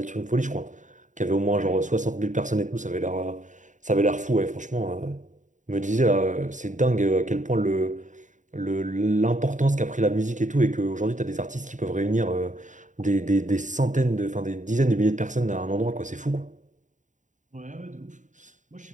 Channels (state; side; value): late; left; 0.36 ms